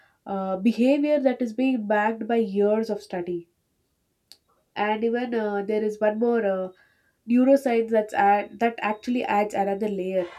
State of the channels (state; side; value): identical; both; correlation 1.00